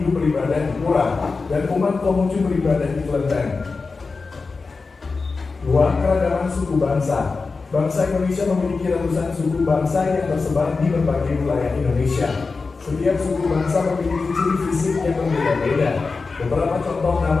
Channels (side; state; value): right; quieter; 4.2 dB